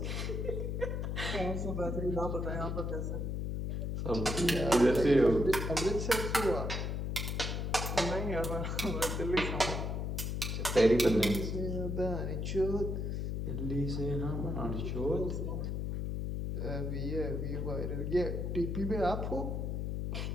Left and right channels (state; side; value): noise; left; hum, 1 dB below the sound